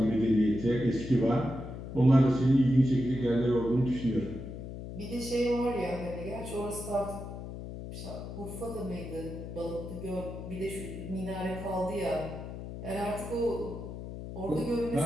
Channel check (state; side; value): noise; left; hum, 9 dB below the sound